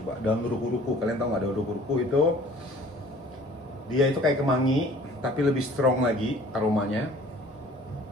Daun ruku-ruku. Kalian tahu nggak daun ruku-ruku itu? Dia itu kayak kemangi, tapi lebih strong lagi aromanya.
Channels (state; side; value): normal; both; correlation 0.51